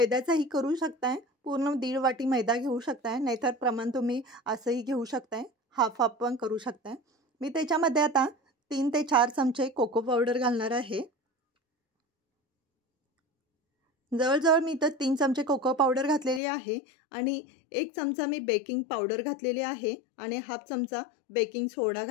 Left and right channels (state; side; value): drops out; right; at 16.4 s